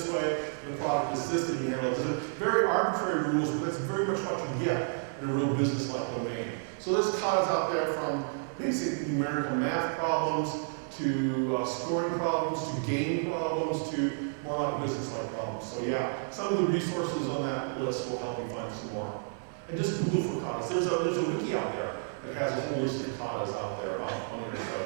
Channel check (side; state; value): left; silent; 57 dB below the other